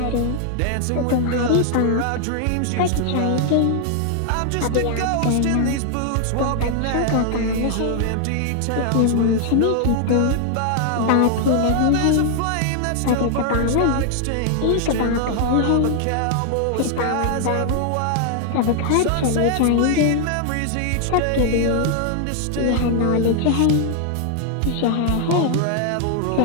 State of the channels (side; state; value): both; different; correlation 0.00